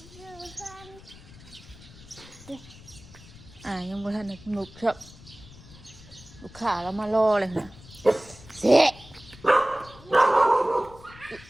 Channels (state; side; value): noise; left; rumble, 20 dB below the sound